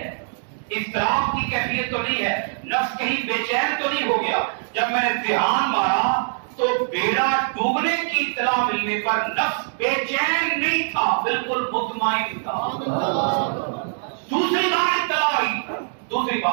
اضطراب کی کیفیت تو نہیں ہے, نفس کہیں بے چین تو نہیں ہو گیا. جب میں نے دھیان مارا تو بیڑا ڈوبنے کی اطلاع ملنے پر نفس بے چین نہیں تھا, بالکل مطمئن تھا. دوسری بار اطلاع آئی, دوسری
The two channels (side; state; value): left; silent; digital silence